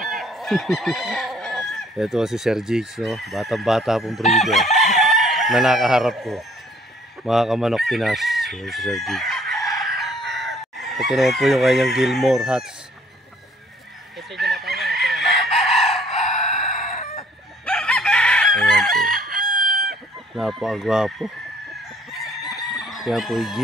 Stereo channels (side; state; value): both; normal; correlation 0.61